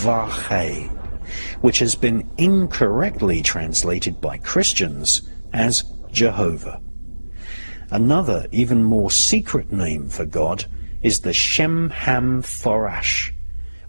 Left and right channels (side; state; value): both; inverted; correlation -1.00